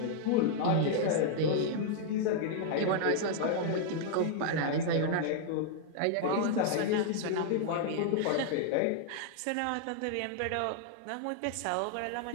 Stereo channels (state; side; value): different; both; correlation -0.01